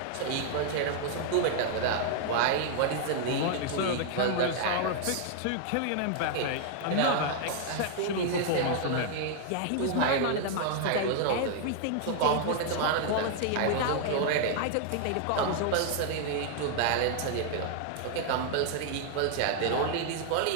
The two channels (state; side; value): different; both; correlation 0.00